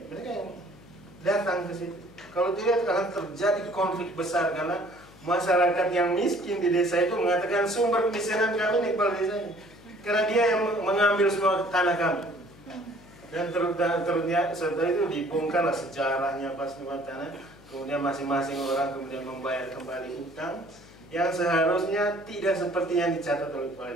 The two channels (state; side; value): noise; left; hum, 23 dB below the sound